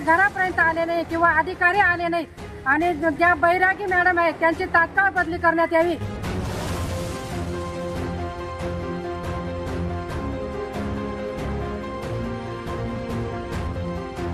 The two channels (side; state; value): both; identical; correlation 1.00